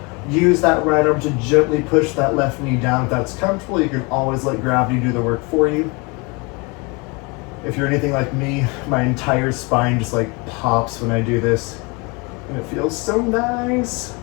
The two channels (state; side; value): quieter; right; 28.6 dB